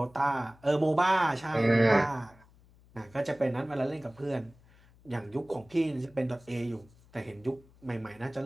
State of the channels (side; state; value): left; noise; hum, 27 dB below the sound